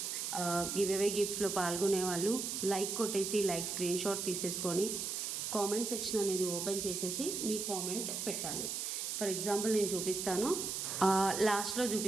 గివ్ అవే గిఫ్ట్స్లో పాల్గొనే వాళ్ళు లైక్ కొట్టేసి లైక్ స్క్రీన్ షాట్ తీసేసుకొని కామెంట్ సెక్షన్ అనేది ఓపెన్ చేసేసి మీ కామెంట్ పెట్టాలి. ఫర్ ఎగ్జాంపుల్ నేను చూపిస్తాను, లాస్ట్లో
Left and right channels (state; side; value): noise; right; hiss, 3 dB below the sound